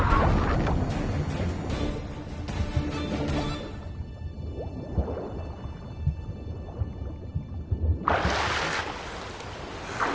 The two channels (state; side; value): identical; both; correlation 1.00